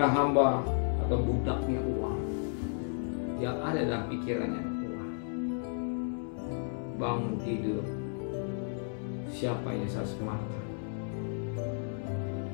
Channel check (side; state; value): right; silent; 56 dB below the other